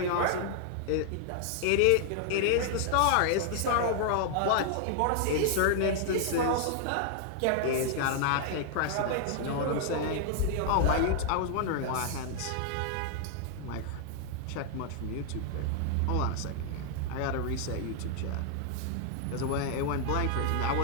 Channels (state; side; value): different; both; correlation 0.00